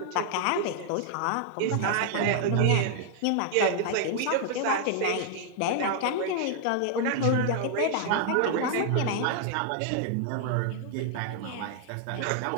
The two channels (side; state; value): both; different; correlation -0.01